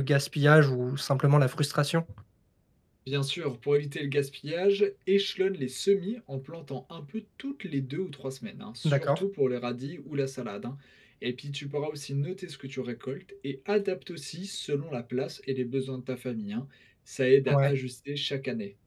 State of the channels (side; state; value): both; identical; correlation 1.00